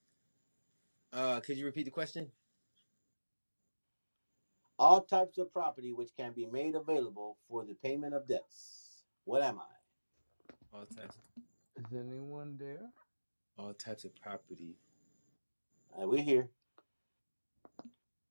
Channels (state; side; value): inverted; both; correlation -1.00